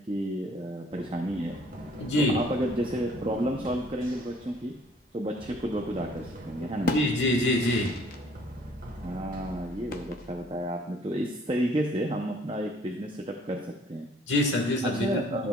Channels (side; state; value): both; normal; correlation 0.58